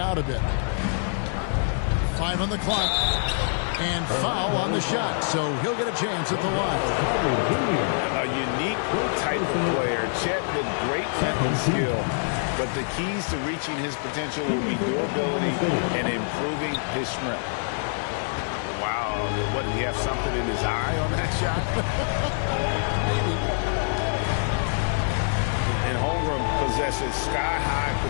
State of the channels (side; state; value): right; silent; digital silence